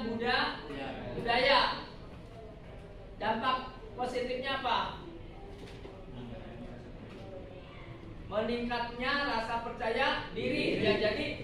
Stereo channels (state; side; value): identical; both; correlation 1.00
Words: budaya. Dampak positifnya apa? Meningkatnya rasa percaya diri, ya. Jadi